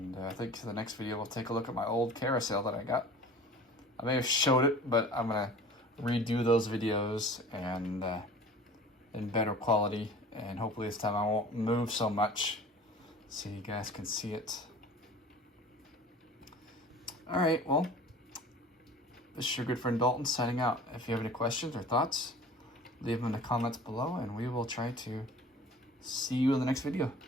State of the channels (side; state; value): both; normal; correlation 0.44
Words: I think for the next video, we'll take a look at my old carousel that I got. I may have showed it, but I'm gonna redo those videos and in better quality. And hopefully this time I won't move so much, so you guys can see it. All right, well, this is your good friend Dalton signing out. If you have any questions or thoughts, leave them in the comments below, and we will try to see you in the next video.